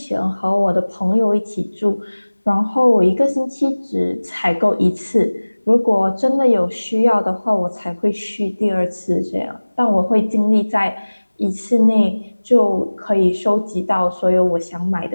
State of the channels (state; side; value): inverted; both; correlation -1.00